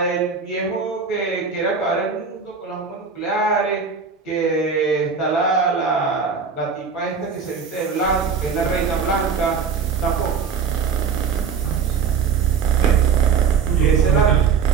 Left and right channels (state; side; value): quieter; left; 5.9 dB